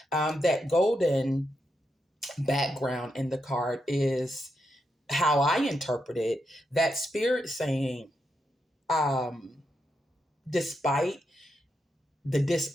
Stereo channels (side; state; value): both; normal; correlation 0.83